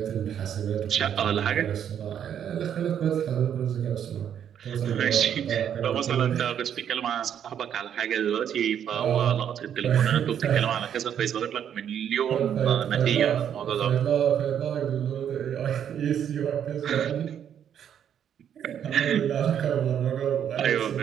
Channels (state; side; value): quieter; left; 9.1 dB